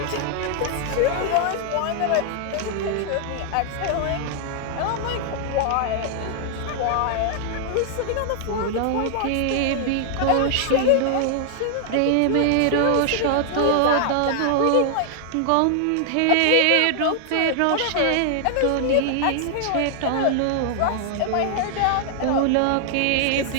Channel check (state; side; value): different; both; correlation 0.00